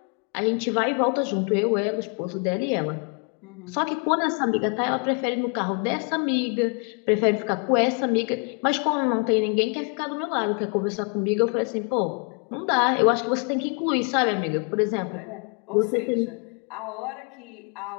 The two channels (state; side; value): quieter; right; 35.6 dB